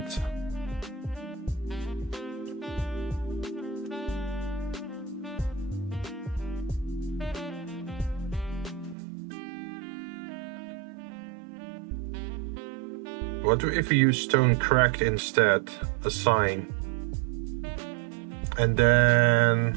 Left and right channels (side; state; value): left; drops out; at 9.0 s